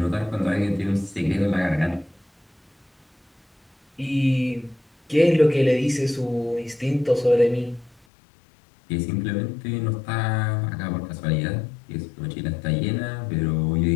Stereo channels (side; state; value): right; drops out; at 8.0 s